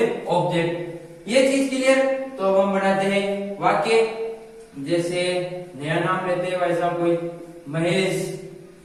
ऑब्जेक्ट। ये चीज क्लियर। तो अब हम बनाते हैं वाक्य, जैसे नया नाम लेते हैं भाई साहब, कोई महेश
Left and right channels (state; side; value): identical; both; correlation 1.00